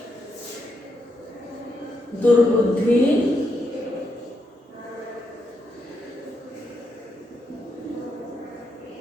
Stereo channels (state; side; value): normal; both; correlation 0.81